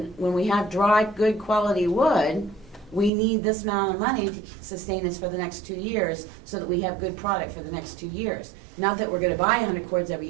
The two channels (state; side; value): drops out; left; at 3.1 s